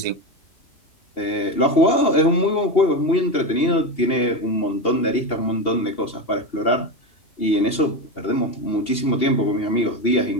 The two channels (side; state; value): right; late; 2.8 ms